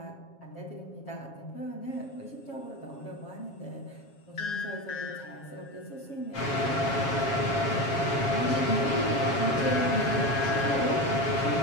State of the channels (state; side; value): late; right; 7.3 ms